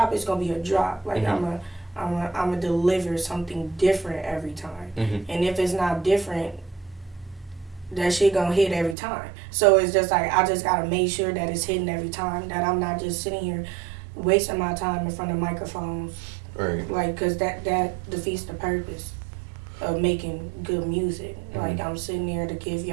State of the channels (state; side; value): drops out; left; at 9.0 s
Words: it's going to be a drop. Like, I'm going to deliver something different every time. And if it's not different, that shit going to hit every time. So it's just like, I just got to make sure that it's hitting every time, that I'm not just sitting here wasting my time in front of microphones. Right. Like, because that defeats the purpose of making good music. Like, I'm sitting there to give